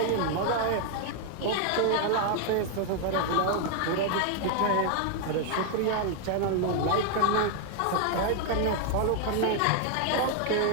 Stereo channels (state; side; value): different; both; correlation 0.00